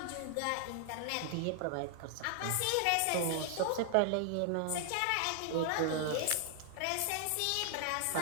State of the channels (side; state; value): both; different; correlation 0.00